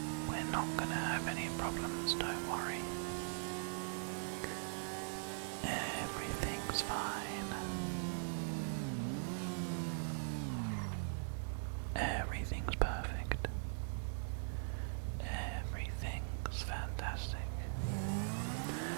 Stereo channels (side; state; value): left; silent; digital silence